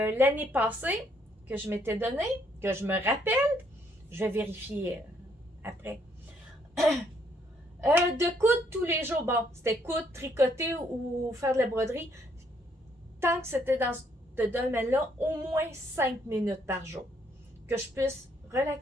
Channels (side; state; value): both; normal; correlation 0.69